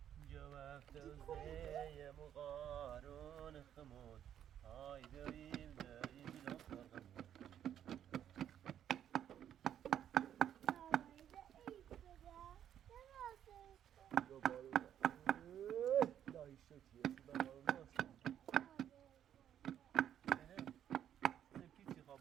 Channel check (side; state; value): left; quieter; 10.1 dB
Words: جواب توزيع مغارون خمود هاي دايم الأصفر لا يشوتي سبكيتي